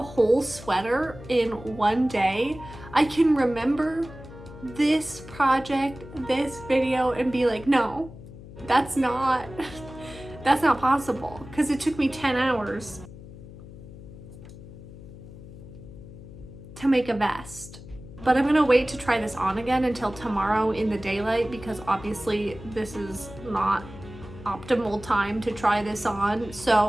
whole sweater in one day, I can remember this project, this video, and be like, no, that's not possible, because it took me 10 hours to make a vest. But I'm gonna wait to try this on again until tomorrow in the daylight, because obviously this is not optimal time to try this on.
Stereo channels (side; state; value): left; noise; hum, 16 dB below the sound